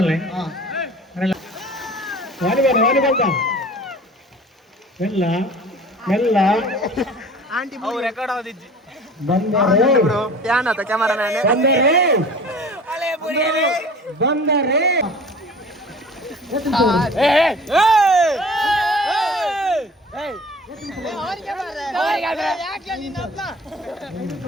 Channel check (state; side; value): normal; both; correlation 0.44